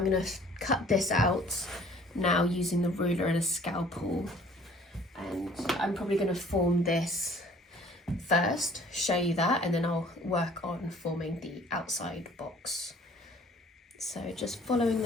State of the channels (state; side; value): normal; both; correlation 0.54